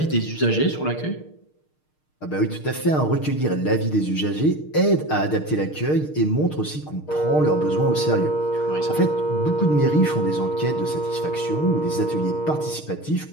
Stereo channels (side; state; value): right; late; 6.6 ms